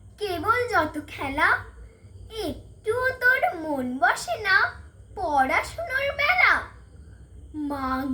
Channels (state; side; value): identical; both; correlation 1.00